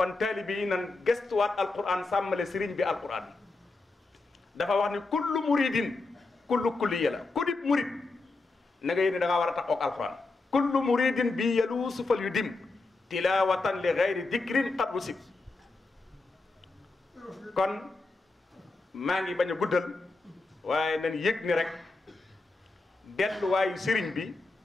taalibe yi nan gestuwaat alquran sàmmale sëriñ bi alquran dafa wax ni kullu muridin kullu kulliya la ku dib murid na nga yéene da ngaa war a taxoog alquran kullu muridin bi yaluusu fal yu dim tilawatan li gayri dikrin qad wusib kon maa ngi bañ a guddal waaye nañ yëg ni rek delluwaayu sëriñ bi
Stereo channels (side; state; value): right; quieter; 3.5 dB